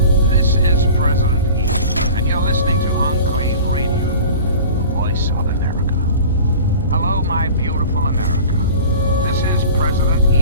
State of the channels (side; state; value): both; inverted; correlation -0.39